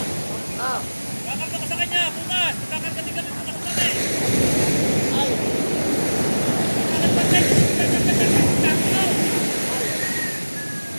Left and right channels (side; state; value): both; inverted; correlation -1.00